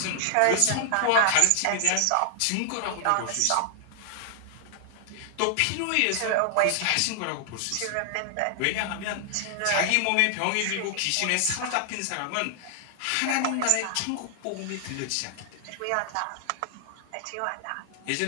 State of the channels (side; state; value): both; different; correlation 0.00